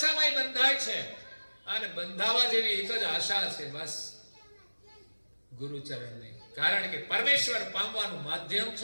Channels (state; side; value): inverted; both; correlation -1.00